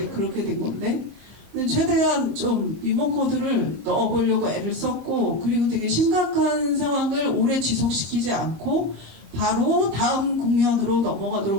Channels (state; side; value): late; left; 25 ms